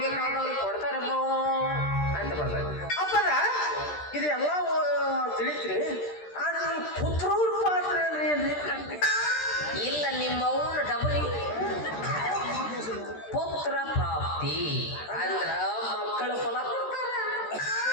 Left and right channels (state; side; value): late; right; 13 ms